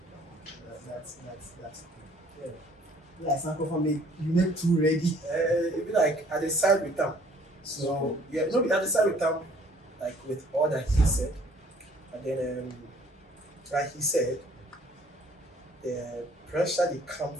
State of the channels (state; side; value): normal; both; correlation 0.58